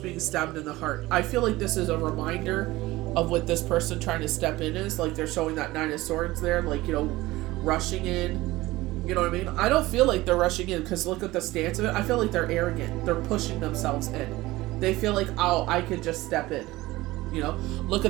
being stabbed in the heart. I feel like this is a reminder of what this person trying to step in is. Like, they're showing that Nine of Swords there, like, you know, rushing in. You know what I mean? I don't feel like they're rushing in because look at the stance of it. I feel like they're arrogant. They're pushing themselves in. They feel like, oh, I could just step in. You know, look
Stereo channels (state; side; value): quieter; left; 18.7 dB